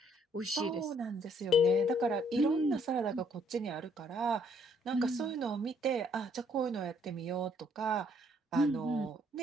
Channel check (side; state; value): both; normal; correlation 0.65